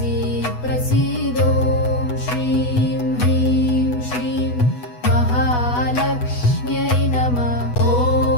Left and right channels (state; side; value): late; right; 8.1 ms